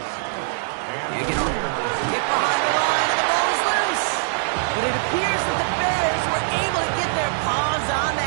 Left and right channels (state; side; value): silent; left; 60 dB below the other